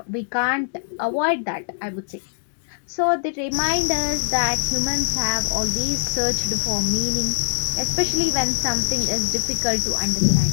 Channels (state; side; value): silent; right; digital silence